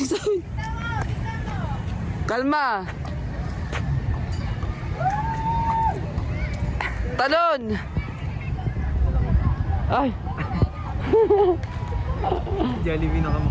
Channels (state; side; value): identical; both; correlation 1.00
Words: sa akin. Kalma. Talon. Ay. Jollibee na